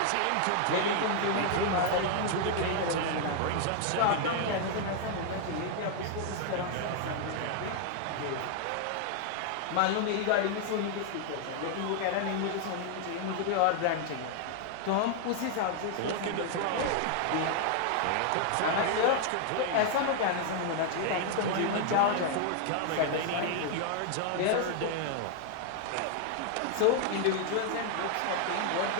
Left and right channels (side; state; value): both; different; correlation 0.00